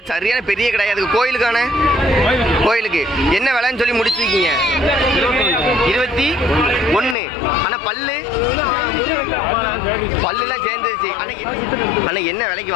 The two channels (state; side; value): drops out; right; at 7.2 s